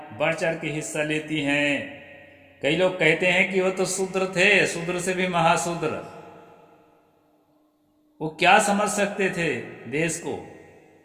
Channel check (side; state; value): both; identical; correlation 1.00